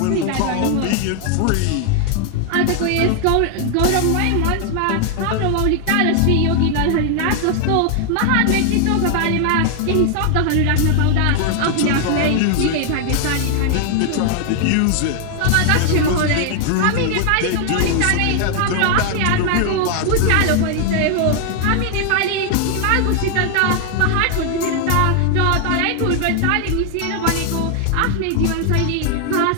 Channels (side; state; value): both; different; correlation 0.00